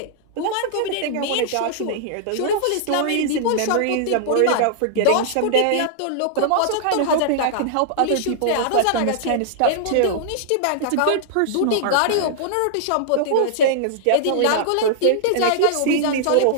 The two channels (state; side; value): different; both; correlation -0.01